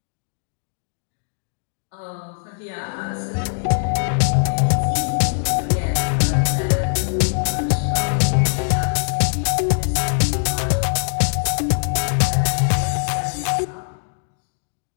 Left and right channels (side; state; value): right; silent; digital silence